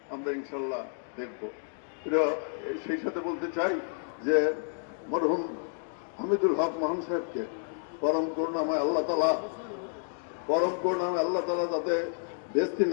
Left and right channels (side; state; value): right; silent; digital silence